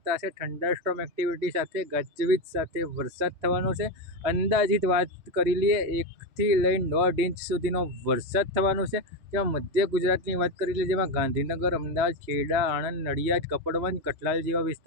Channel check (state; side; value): late; left; 3.4 ms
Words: છે. થંડરસ્ટોર્મ એક્ટિવિટી સાથે ગાજવીજ સાથે વરસાદ થવાનો છે. અંદાજિત વાત કરી લઈએ 1 થી લઈને 1.5 ઇંચ સુધીનો વરસાદ થવાનો છે. જેમાં મધ્ય ગુજરાતની વાત કરી લઈએ, જેમાં ગાંધીનગર, અમદાવાદ, ખેડા, આણંદ, નડિયાદ, કપડવંજ, કઠલાલ જેવા